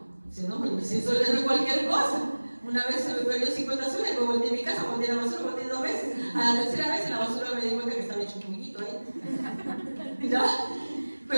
Dice, no, pero 100 soles no es cualquier cosa. Una vez se me perdió 50 soles, luego volteé a mi casa, volteé a la basura, volteé 2 veces. A la tercera vez en la basura me di cuenta que estaba hecho un poquito ahí. ¿Ya?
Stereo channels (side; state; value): both; inverted; correlation -1.00